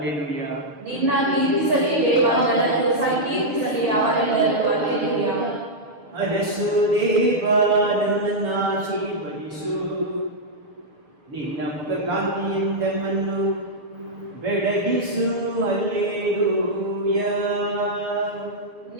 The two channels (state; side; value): late; left; 6.6 ms